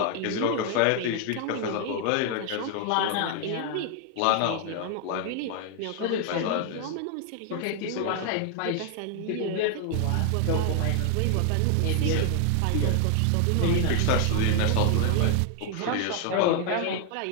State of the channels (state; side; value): different; both; correlation 0.00